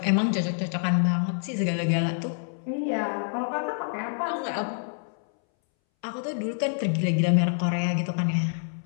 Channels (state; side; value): silent; right; 60 dB below the other